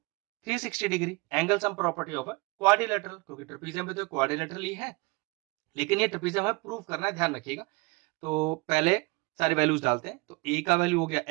360 degree. Angle sum property of quadrilateral, क्योंकि ट्रेपीजियम में तो क्वाड्रिलेटरल ही है, लेकिन ये ट्रेपीजियम हमें प्रूव करना है, ध्यान रखिएगा। तो पहले सारी वैल्यूज डालते हैं। तो ए का वैल्यू हो गया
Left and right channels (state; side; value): quieter; left; 26.2 dB